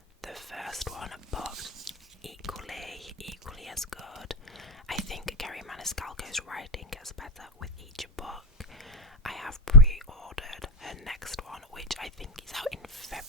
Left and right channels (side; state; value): both; normal; correlation 0.04